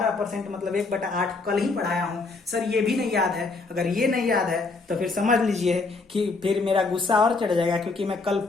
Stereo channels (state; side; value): quieter; right; 3.8 dB